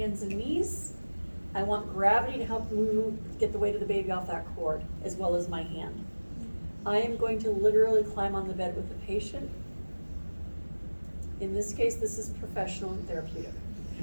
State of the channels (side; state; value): both; inverted; correlation -1.00